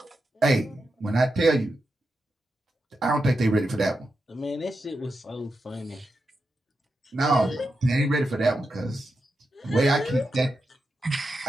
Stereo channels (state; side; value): normal; both; correlation 0.88